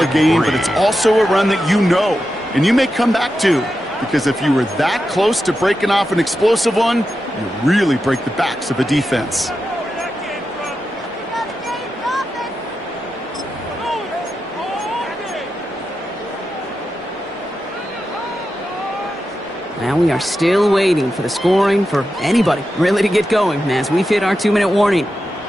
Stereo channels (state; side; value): normal; both; correlation 0.89